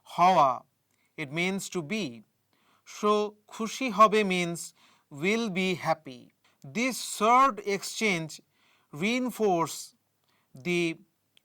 হওয়া. It means to be. So খুশি হবে means will be happy. This third exchange reinforces the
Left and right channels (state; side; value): identical; both; correlation 1.00